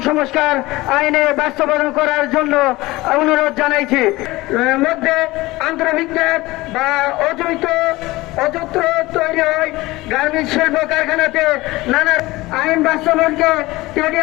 সংস্কার আইনে বাস্তবায়ন করার জন্য অনুরোধ জানাইছি। মধ্যে আন্তর্ভিজ্ঞান বা অযত্র তৈরি হয় গার্মেন্টস শিল্প কারখানাতে নানা আইন বাস্তবায়নকে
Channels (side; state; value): right; quieter; 19.9 dB